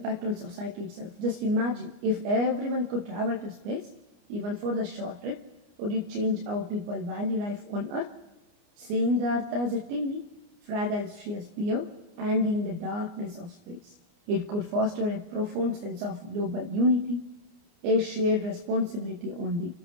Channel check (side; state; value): left; late; 29 ms